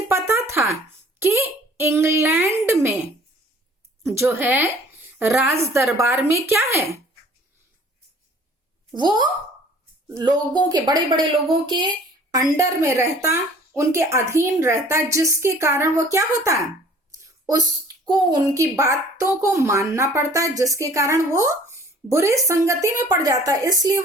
पता था कि इंग्लैंड में जो है राज दरबार में क्या है, वो लोगों के, बड़े बड़े लोगों के अंडर में रहता, उनके अधीन रहता, जिसके कारण वो क्या होता है, उसको उनकी बातों को मानना पड़ता है, जिसके कारण वो बुरी संगति में पड़ जाता है। इसलिए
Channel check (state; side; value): normal; both; correlation 0.51